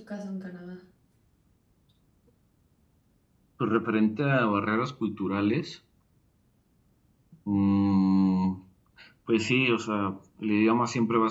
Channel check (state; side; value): identical; both; correlation 1.00